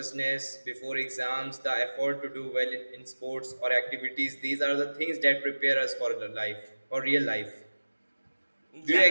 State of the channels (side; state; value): both; inverted; correlation -1.00